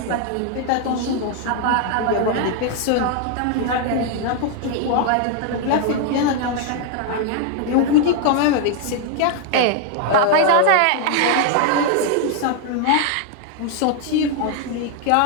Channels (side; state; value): both; different; correlation 0.00